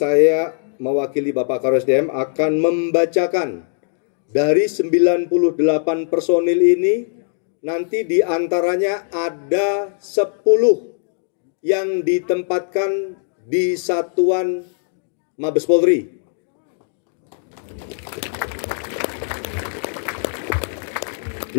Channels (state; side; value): silent; right; digital silence